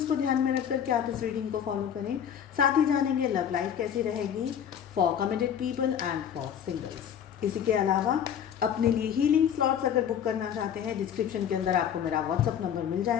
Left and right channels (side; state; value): right; quieter; 8.9 dB